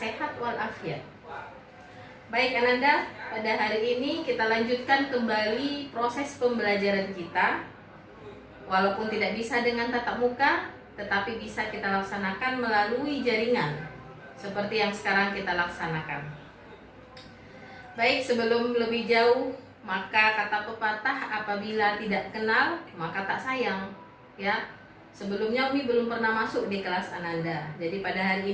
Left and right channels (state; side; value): identical; both; correlation 1.00